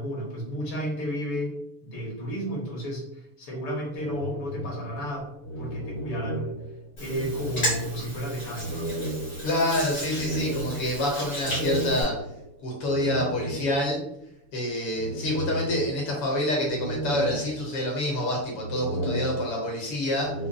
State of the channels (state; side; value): late; right; 6.9 ms